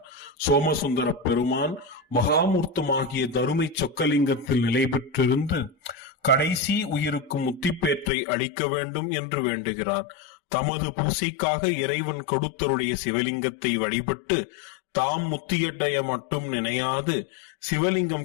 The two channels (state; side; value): drops out; right; at 8.1 s